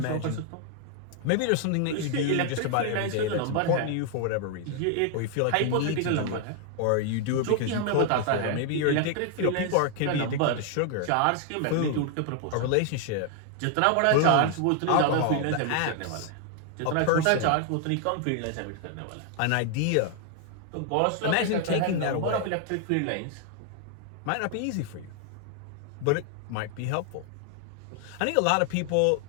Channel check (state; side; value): different; both; correlation 0.00